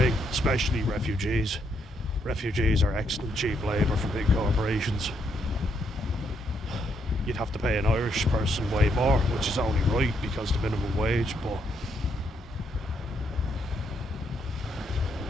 especially refugees. Refugees are excellent cheap labour for big corporations. You'd have to pay an Irish person way more, which is only right because the minimum wage, but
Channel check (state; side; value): normal; both; correlation 0.75